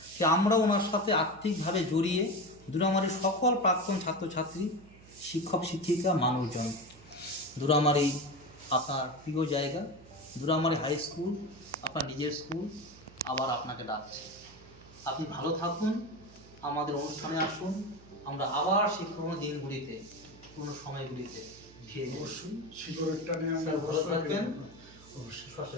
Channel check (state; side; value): noise; right; hum, 22 dB below the sound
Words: যে আমরা ওনার সাথে আর্থিকভাবে জড়িয়ে দুরামারির সকল প্রাক্তন ছাত্রছাত্রী, শিক্ষক শিক্ষিকা, মানুষজন, দুরামারি আপনার প্রিয় জায়গা, দুরামারি হাই স্কুল আপনার নিজের স্কুল আবার আপনাকে ডাকছে। আপনি ভালো থাকুন, আমাদের অনুষ্ঠানে আসুন, আমরা আবার সেই পুরনো দিনগুলিতে, পুরনো সময়গুলিতে ফিরে যাবো। অবশ্যই শিকড়ের টানে আমরা ভালো থাকবেন। অবশ্যই